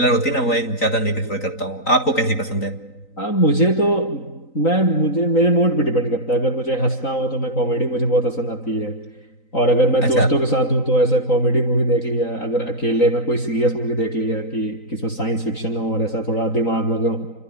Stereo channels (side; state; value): right; late; 3.9 ms